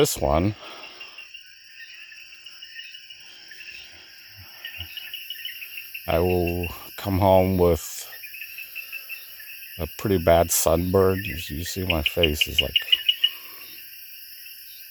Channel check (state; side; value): identical; both; correlation 1.00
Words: one, I will come home with a pretty bad sunburn. You see, my face is like